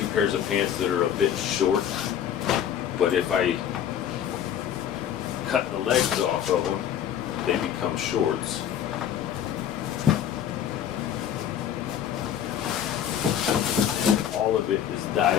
pairs of pants that are a bit short, but if I cut the legs off of them, they become shorts. And all of it is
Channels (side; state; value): right; quieter; 9.6 dB